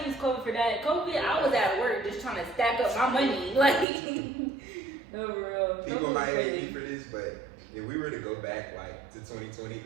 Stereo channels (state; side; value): drops out; left; at 3.9 s